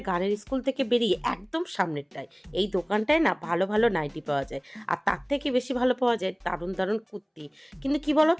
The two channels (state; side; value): identical; both; correlation 1.00